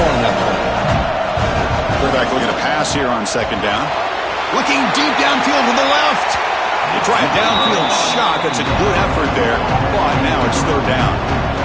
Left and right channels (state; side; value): identical; both; correlation 1.00